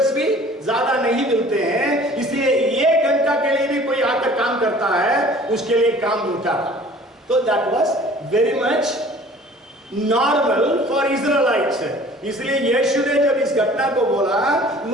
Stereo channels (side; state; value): both; normal; correlation 0.49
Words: भी ज्यादा नहीं मिलते हैं, इसलिए 1 घंटा के लिए भी कोई आकर काम करता है, उसके लिए काम मिलता था। तो that was very much normal for Israelites. इसलिए यीशु ने जब इस घटना को बोला,